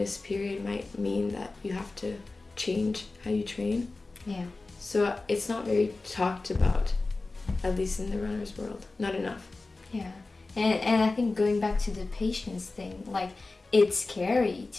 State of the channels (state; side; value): quieter; right; 3.5 dB